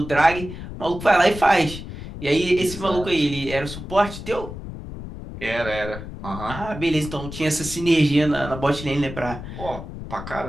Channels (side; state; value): left; noise; rumble, 10 dB below the sound